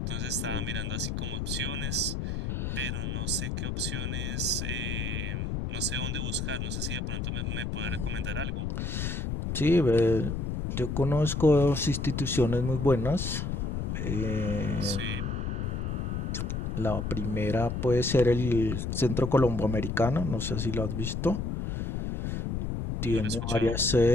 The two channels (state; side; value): noise; left; rumble, 2 dB below the sound